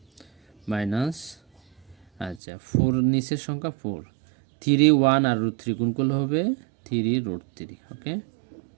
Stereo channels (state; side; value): drops out; left; at 2.4 s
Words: মাইনাস আচ্ছা 4 নিচের সংখ্যা 4, 3 1 আর √3 গুণ করলে হবে 3√3। ওকে,